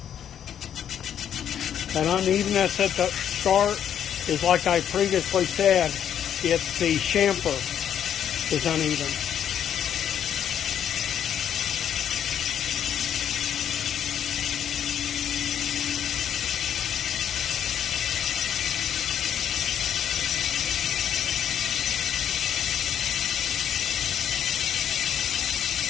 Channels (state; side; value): quieter; right; 9.4 dB